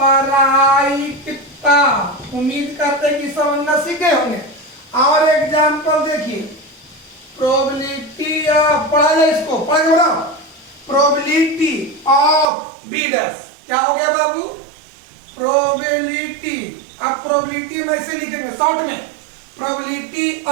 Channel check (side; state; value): left; drops out; at 12.5 s